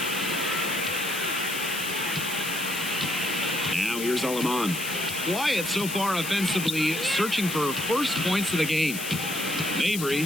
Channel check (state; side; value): noise; left; hiss, 6 dB below the sound